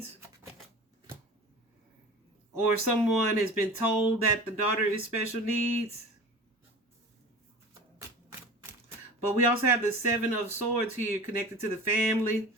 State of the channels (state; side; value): normal; both; correlation 0.36